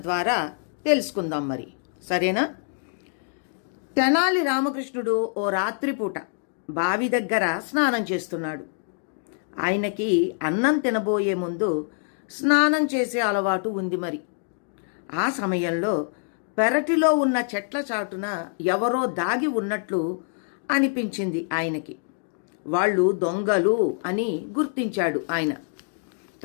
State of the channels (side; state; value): right; silent; digital silence